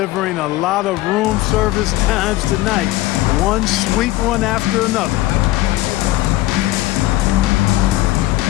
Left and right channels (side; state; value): right; quieter; 17.0 dB